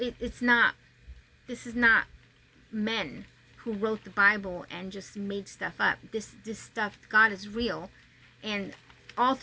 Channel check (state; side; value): identical; both; correlation 1.00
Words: this is not men who wrote the Bible and just made stuff up. This stuff, God is real, and all